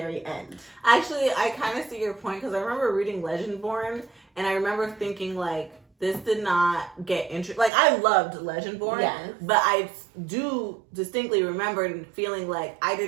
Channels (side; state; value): left; drops out; at 7.7 s